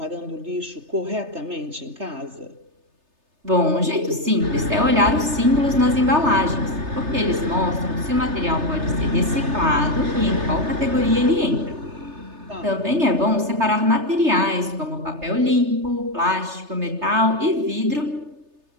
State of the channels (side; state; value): left; late; 3.3 ms